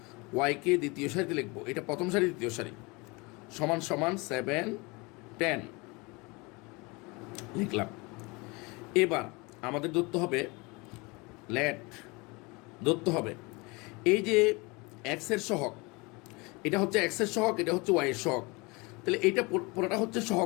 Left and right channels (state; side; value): quieter; right; 26.6 dB